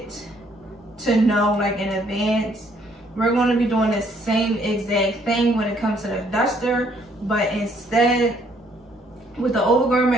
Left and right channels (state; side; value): normal; both; correlation 0.66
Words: to know, like in advance, we're going to be doing the same exact thing when it comes to the duster, but instead with the